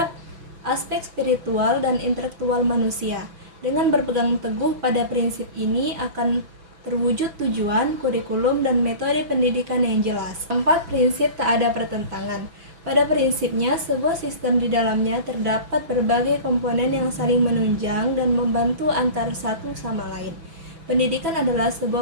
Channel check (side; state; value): left; late; 6.1 ms